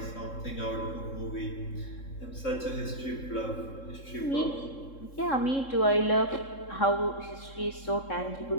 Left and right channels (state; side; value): late; right; 3.7 ms